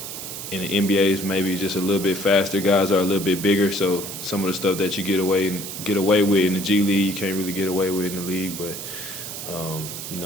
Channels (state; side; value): noise; right; hiss, 8 dB below the sound